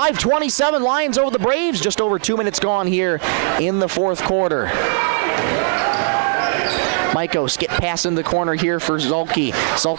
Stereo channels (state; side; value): silent; left; digital silence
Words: Lions over the Braves. Just over 2 minutes gone here in the fourth quarter. Maiko skip pass in the corner here for Zulke.